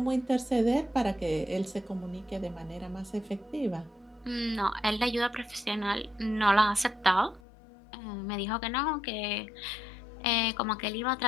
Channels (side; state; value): right; drops out; at 7.4 s